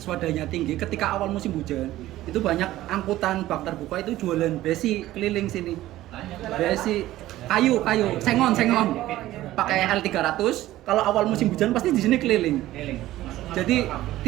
swadanya tinggi, ketika awal musim hujan itu banyak angkutan bak terbuka itu jualan besi keliling sini. Besi kayu sengon pakai L300. Kalau awal musim hujan pasti di sini keliling. Jadi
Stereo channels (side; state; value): left; quieter; 15.3 dB